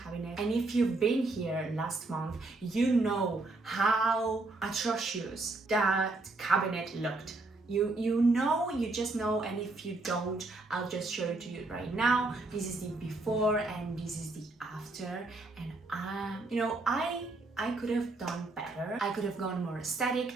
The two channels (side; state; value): left; quieter; 3.2 dB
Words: and if you've been here last month, you know how atrocious that cabinet looked. You just know, and if you don't, I'll just show it to you right now. This is the before and this is the after, and I could have done better. I could have gone more aesthetic.